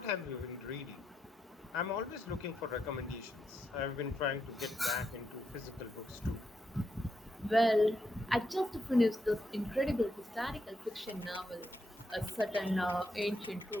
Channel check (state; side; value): normal; both; correlation 0.81